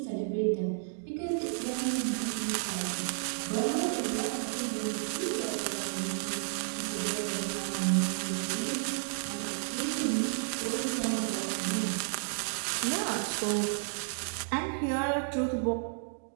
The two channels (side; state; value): left; silent; digital silence